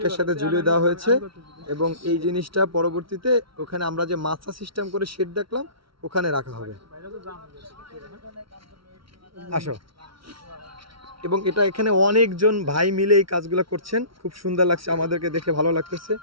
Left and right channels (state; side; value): late; left; 0.75 ms